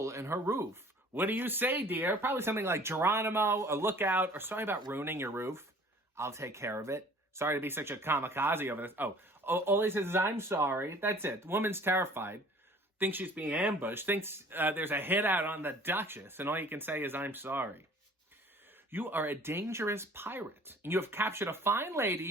in her roof. What do you say, dear? Probably something like Geronimo, a lookout, or sorry about ruining your roof. I'll take care of it. Sorry to be such a kamikaze over this. All he says is, I'm sorry. That's it. The woman's terrified. Thinks she's being ambushed. Thinks there's a hit out on the Duchess. And all you can say is, I'm sorry. You are a dangerous pirate. And you have captured a fine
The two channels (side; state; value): both; normal; correlation 0.50